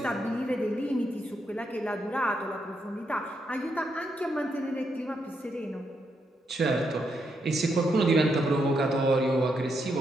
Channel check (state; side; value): normal; both; correlation 0.80